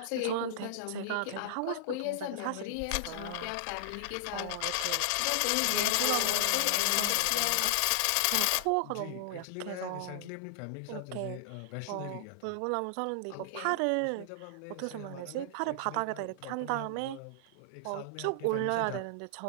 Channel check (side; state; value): both; different; correlation -0.01